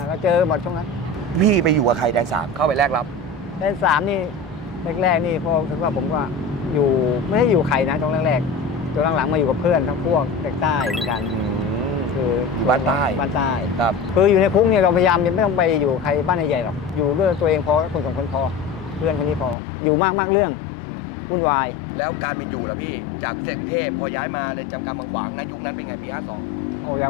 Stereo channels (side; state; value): right; drops out; at 19.6 s